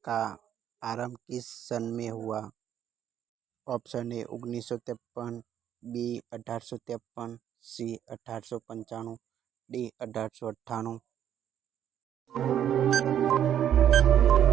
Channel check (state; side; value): quieter; left; 10.1 dB